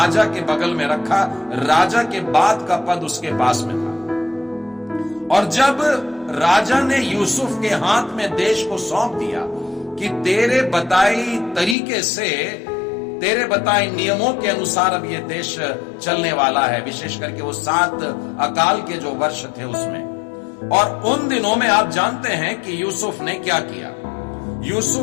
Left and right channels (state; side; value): drops out; right; at 11.8 s